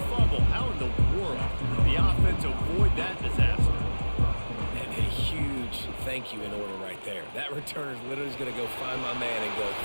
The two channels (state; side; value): inverted; both; correlation -1.00